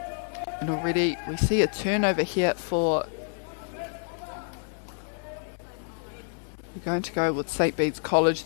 And already we see a turnover here for, we're going to go with St Bede's College,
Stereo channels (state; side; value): silent; right; 59 dB below the other